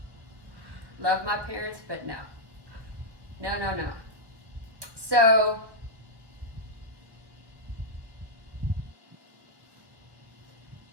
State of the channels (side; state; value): left; late; 1.3 ms